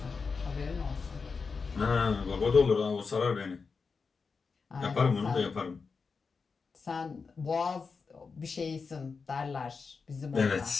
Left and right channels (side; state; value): right; quieter; 5.0 dB